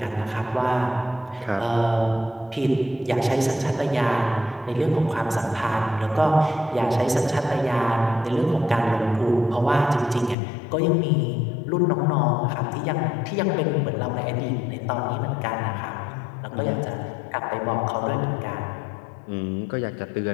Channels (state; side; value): drops out; right; at 10.4 s